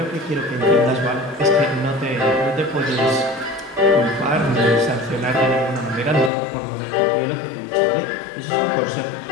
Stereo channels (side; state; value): right; drops out; at 6.3 s